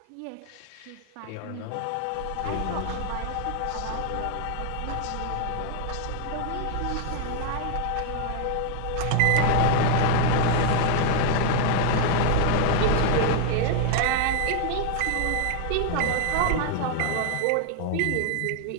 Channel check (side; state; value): both; different; correlation 0.00